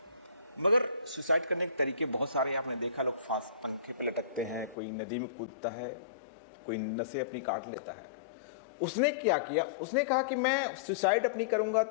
मगर सुसाइड करने के तरीके बहुत सारे आपने देखा, लोग फांस पंखे पे लटकते हैं, कोई नदी में कूदता है, कोई नसें अपनी काट लेता है। उसने क्या किया, उसने कहा कि मैं सुसाइड अपनी करूंगा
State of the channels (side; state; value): right; drops out; at 4.8 s